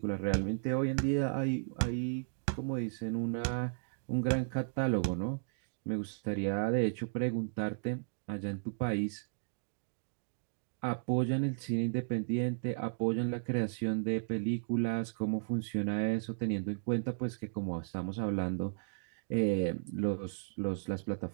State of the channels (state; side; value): silent; left; digital silence